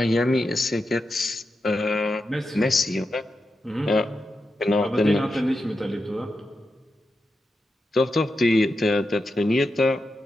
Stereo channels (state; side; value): normal; both; correlation 0.88